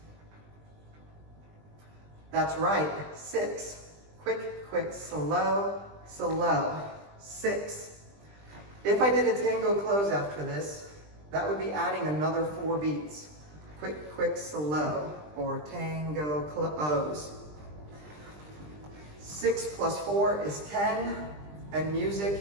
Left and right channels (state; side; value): late; left; 20 ms